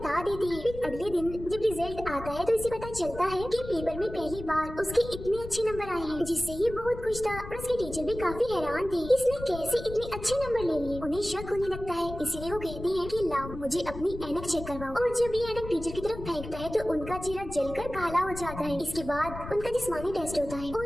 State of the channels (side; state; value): left; noise; rumble, 11 dB below the sound